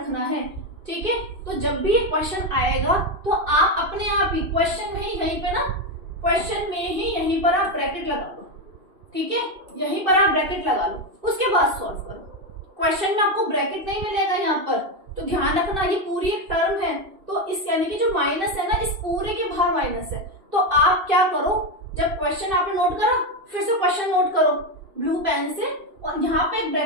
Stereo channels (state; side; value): late; left; 2.6 ms